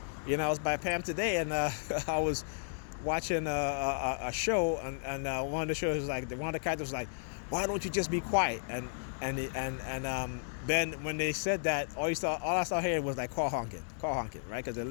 I was by Pam today, and I was watching a show, and one of the shows was like, one of the characters was like, "Why don't you just be quiet?" And then when they said that, all I saw hearing was like car honking, right? Because they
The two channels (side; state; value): right; silent; digital silence